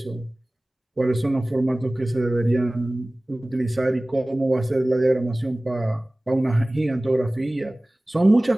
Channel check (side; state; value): both; normal; correlation 0.98